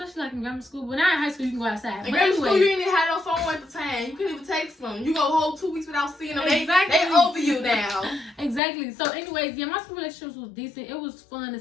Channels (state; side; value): drops out; right; at 8.6 s